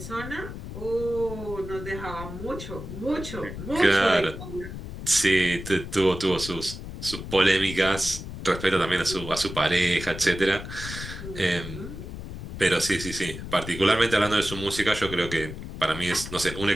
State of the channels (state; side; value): noise; left; rumble, 9 dB below the sound